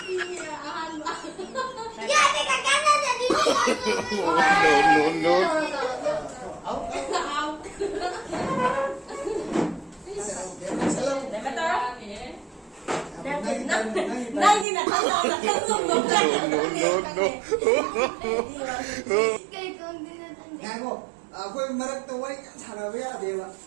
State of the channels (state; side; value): drops out; left; at 14.7 s